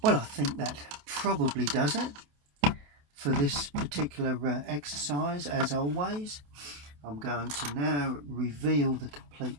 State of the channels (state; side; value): late; left; 28 ms